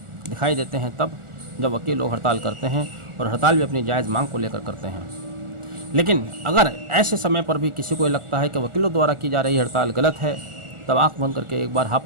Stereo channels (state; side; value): late; left; 1.4 ms